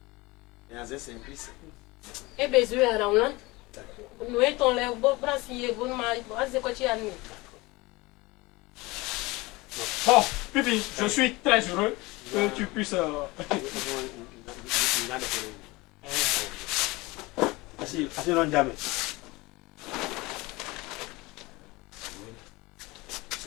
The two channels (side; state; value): right; quieter; 22.6 dB